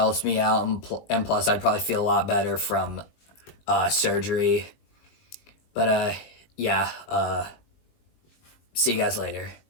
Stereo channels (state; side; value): late; right; 19 ms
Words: me out, and plus I'd probably feel a lot better from surgery. But yeah, see you guys later.